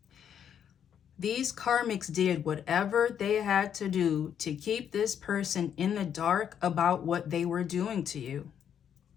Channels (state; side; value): quieter; right; 8.7 dB